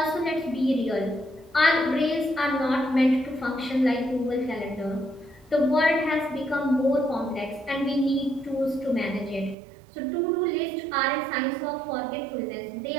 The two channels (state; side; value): drops out; left; at 9.6 s